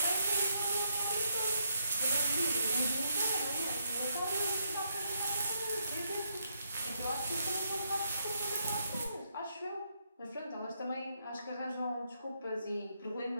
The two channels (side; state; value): both; inverted; correlation -0.77